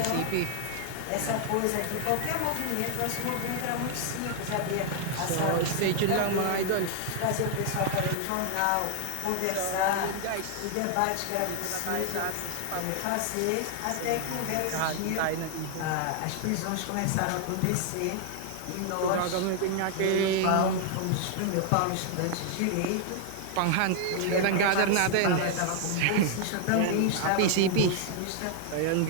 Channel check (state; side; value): different; both; correlation 0.00